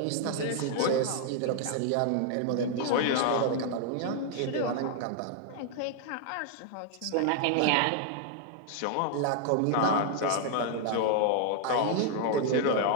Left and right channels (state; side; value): different; both; correlation 0.00